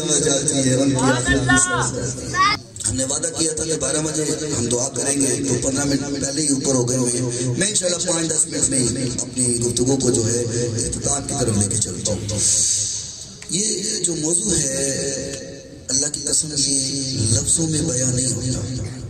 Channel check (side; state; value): both; identical; correlation 1.00